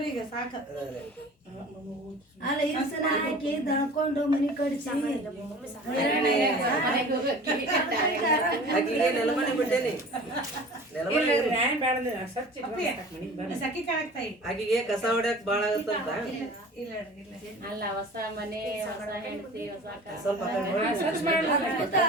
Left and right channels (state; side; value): normal; both; correlation 0.41